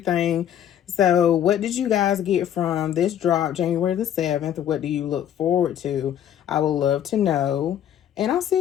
So what did you guys get from this drop January the 7th? What do you look forward to? I would love to know. And I'll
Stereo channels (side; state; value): right; quieter; 10.2 dB